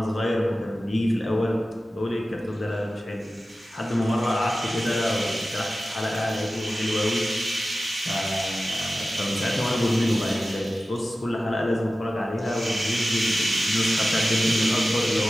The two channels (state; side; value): normal; both; correlation 0.95